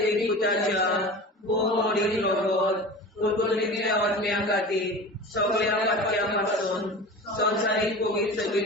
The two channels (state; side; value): normal; both; correlation 0.34